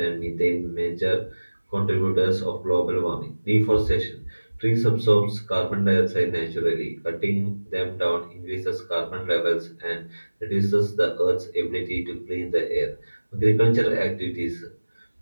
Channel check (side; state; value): both; inverted; correlation -1.00